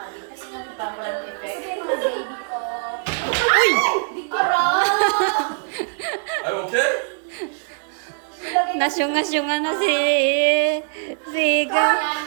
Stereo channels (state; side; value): silent; left; 60 dB below the other